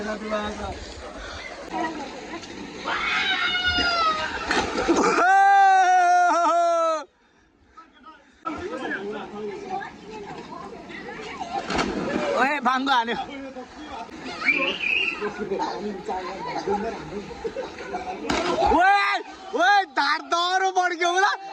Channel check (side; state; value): both; identical; correlation 1.00